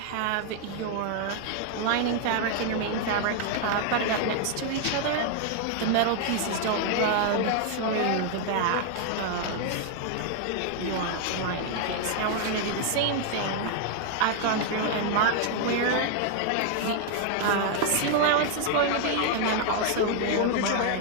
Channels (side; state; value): both; different; correlation 0.00